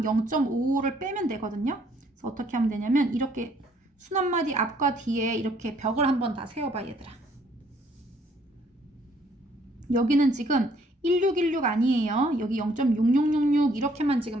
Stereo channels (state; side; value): normal; both; correlation 0.64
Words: 0.5를 빼면 되거든요. 그래서 어떻게 하면 되냐면 이렇게 순한마디 앞과 뒤에 이렇게 벽을 한번 다 세워봐 얘들아. 여기는 지금 1616 아니에요. 여기 0.6666 이렇게만